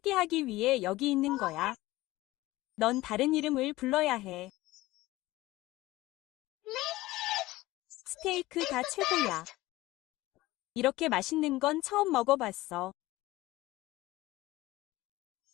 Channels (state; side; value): quieter; right; 18.3 dB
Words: 위해 여기 있는 거야. 넌 다른 이름을 불러야 해. 스테이크가 최고야. 이렇게 맛있는 건 처음 먹어봤어.